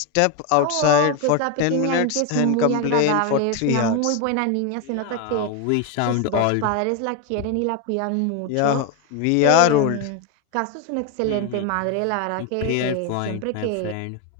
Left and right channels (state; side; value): different; both; correlation 0.01